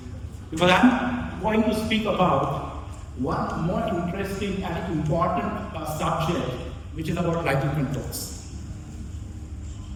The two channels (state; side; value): identical; both; correlation 1.00